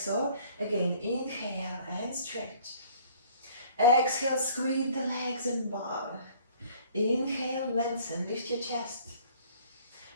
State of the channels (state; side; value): inverted; both; correlation -0.54